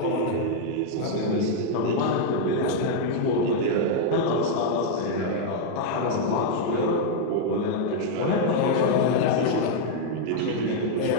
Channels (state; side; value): different; both; correlation -0.01